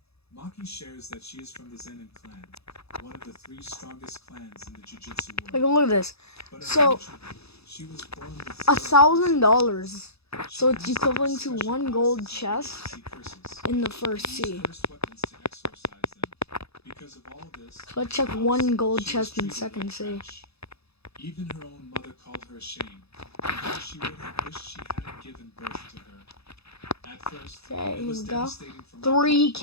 Maki shares that she is from the Zenin clan, one of the 3 strongest clans in the Jiu-Jitsu like world. look at this. But So she was born with $1,000. So it's She equivalent to has special 1 gold classes in which chest to see curses. in the first Use sea. cursed weapons to exorcise them. Because of all this, So let's check 1 gold she was chest in treated second like sea. trash. Even her own mother called her a shame, and how she would have wished she hadn't given birth to her. At first, Okay, it here was we go. devastating for Maki.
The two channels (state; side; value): late; right; 0.79 ms